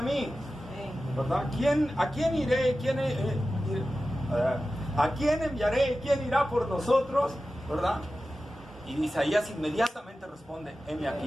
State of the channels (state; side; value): normal; both; correlation 0.94